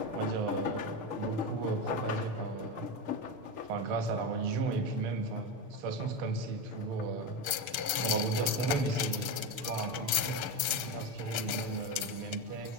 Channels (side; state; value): left; late; 6.8 ms